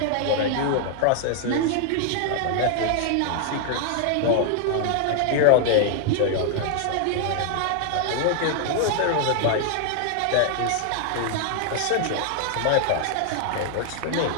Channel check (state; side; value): different; both; correlation 0.00